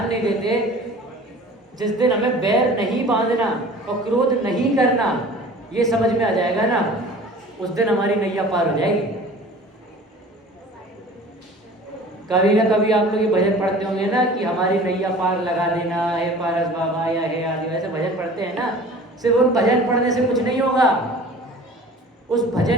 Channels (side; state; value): both; normal; correlation 0.44